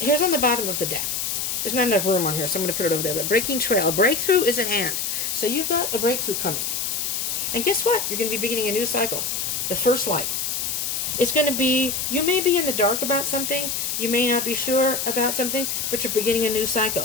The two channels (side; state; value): left; noise; hiss, 1 dB below the sound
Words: on the bottom of the deck. There's not enough room on here, so I'm going to put it over there. But breaking trail. A breakthrough is at hand. So you've got a breakthrough coming. And guess what? You're going to be beginning a new cycle. The first light. It's going to be, you may be in the dark about something, you may not be sure about something, but you're beginning a new